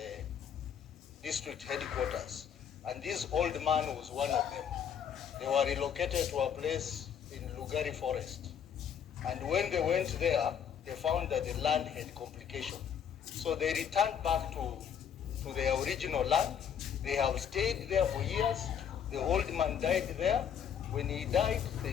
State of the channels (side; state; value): right; quieter; 8.1 dB